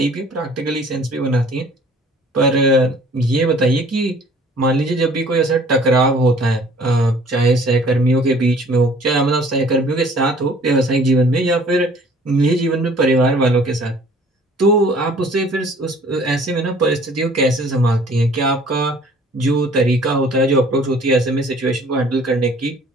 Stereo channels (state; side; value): normal; both; correlation 0.53